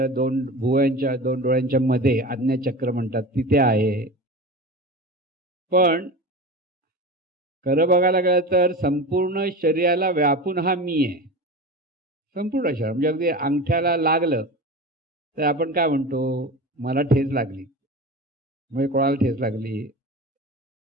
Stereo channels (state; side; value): normal; both; correlation 0.30